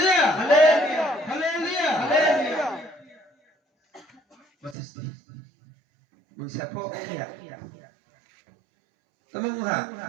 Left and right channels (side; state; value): left; drops out; at 4.8 s